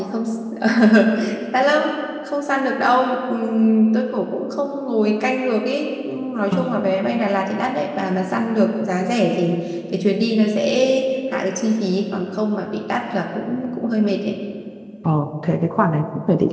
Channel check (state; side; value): identical; both; correlation 1.00